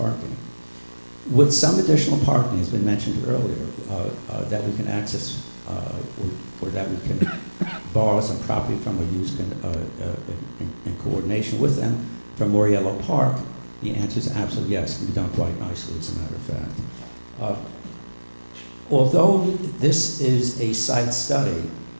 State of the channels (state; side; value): inverted; both; correlation -1.00